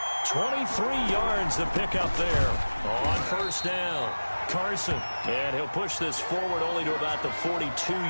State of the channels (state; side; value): inverted; both; correlation -1.00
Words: 23 yards to pick up there on first down. Carson, and he'll push this forward only to about the